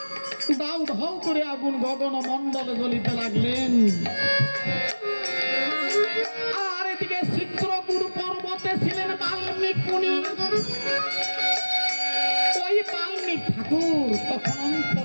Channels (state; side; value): inverted; both; correlation -1.00